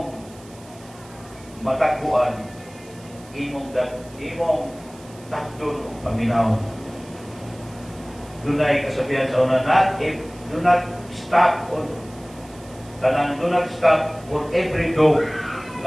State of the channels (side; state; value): right; noise; hiss, 23 dB below the sound